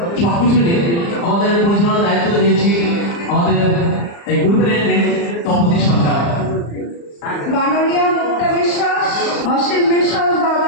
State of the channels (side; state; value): right; late; 35 ms